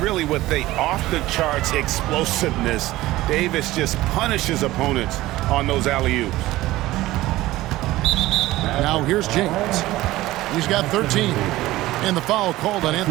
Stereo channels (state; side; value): quieter; left; 17.1 dB